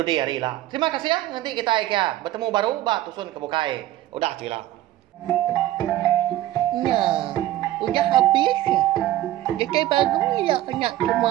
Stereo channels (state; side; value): quieter; left; 14.5 dB